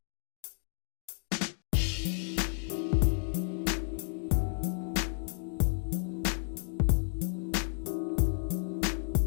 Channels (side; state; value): right; silent; 56 dB below the other